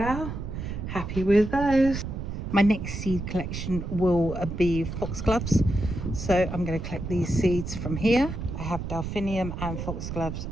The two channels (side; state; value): right; noise; rumble, 6 dB below the sound